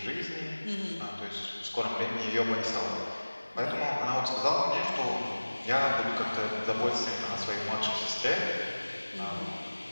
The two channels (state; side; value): inverted; both; correlation -1.00